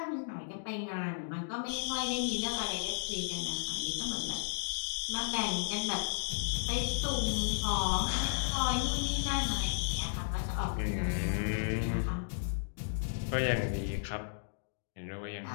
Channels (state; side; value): silent; right; digital silence